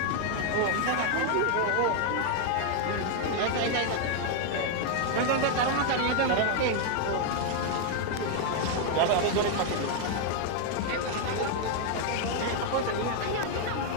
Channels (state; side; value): different; both; correlation 0.00